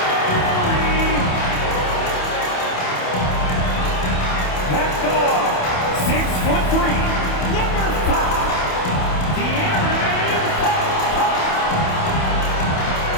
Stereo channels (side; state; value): right; late; 28 ms